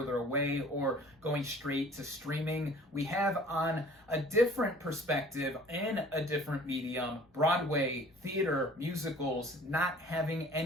away or going straight to streaming, we have on a different perspective in a different medium, Broadway, theater, musicals, not having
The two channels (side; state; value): both; normal; correlation 0.50